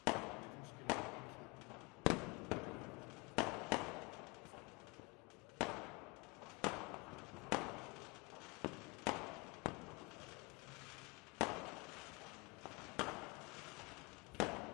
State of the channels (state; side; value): quieter; right; 27.3 dB